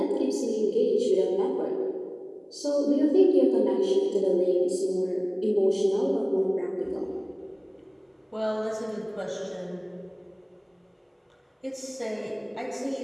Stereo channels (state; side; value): identical; both; correlation 1.00